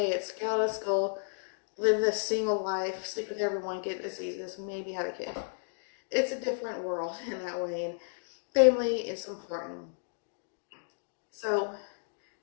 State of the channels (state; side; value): silent; right; digital silence